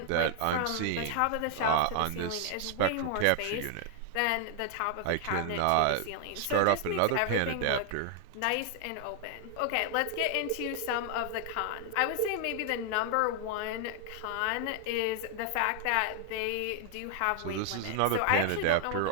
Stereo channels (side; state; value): both; different; correlation 0.00